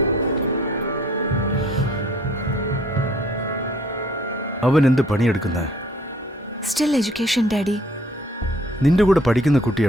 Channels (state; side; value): normal; both; correlation 0.58